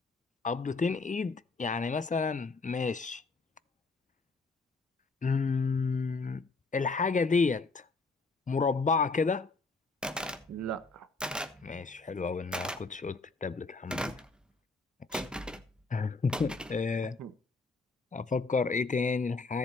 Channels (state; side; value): quieter; right; 3.9 dB